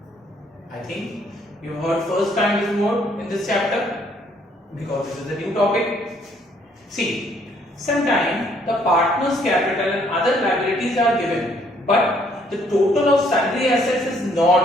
I think you've heard first time this word in this chapter because this is a new topic. See, sometimes the partner's capital and other liabilities are given, but the total of sundry assets is not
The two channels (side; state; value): both; normal; correlation 0.66